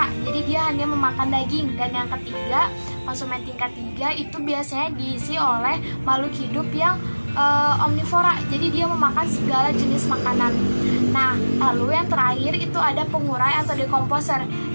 jadi dia hanya memakan daging. Dan yang ketiga, konsumen tingkat 3 itu biasanya diisi oleh makhluk hidup yang omnivora, jadi dia memakan segala jenis makanan. Nah, lalu yang terakhir itu ada pengurai atau dekomposer.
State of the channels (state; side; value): inverted; both; correlation -1.00